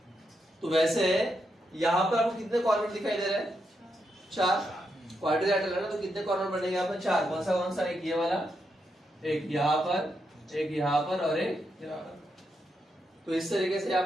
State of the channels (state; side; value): normal; both; correlation 0.83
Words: तो वैसे यहाँ पर आपको कितने कॉर्नर दिखाई दे रहे हैं, 4। क्वाड्रिलेटरल है ना, तो कितने कॉर्नर बनेंगे यहाँ पर, 4। कौन सा, एक ये वाला, एक यहाँ पर, एक यहाँ पर और एक यहाँ पर। तो इस तरीके से यहाँ